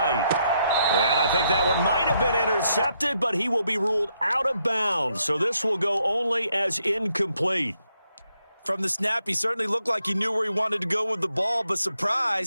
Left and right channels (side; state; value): both; inverted; correlation -0.77